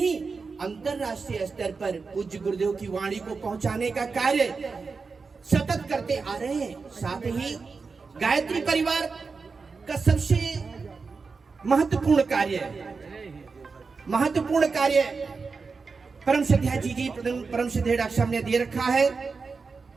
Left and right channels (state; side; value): quieter; left; 4.7 dB